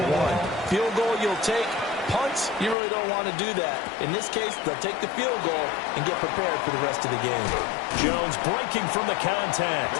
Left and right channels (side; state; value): right; drops out; at 2.8 s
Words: Field goal you'll take. Punts, you really don't want to do that. In this case, they'll take the field goal and get prepared for the rest of the game. Jones breaking from the